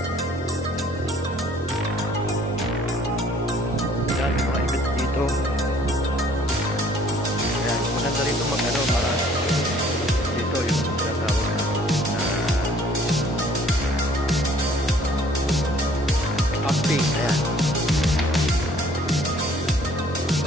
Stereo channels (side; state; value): both; normal; correlation 0.58